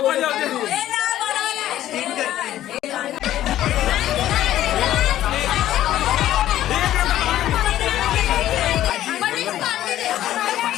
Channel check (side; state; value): right; quieter; 13.0 dB